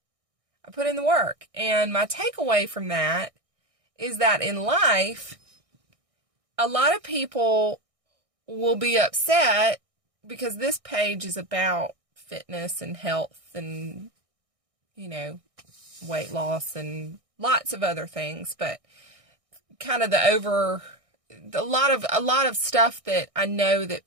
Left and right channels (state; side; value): late; left; 1.6 ms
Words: And my takeaway from that is that in life, a lot of people will be upset because this page is about fitness and health and, weight loss and lots of other things, but kind of a lot of stuff that I know that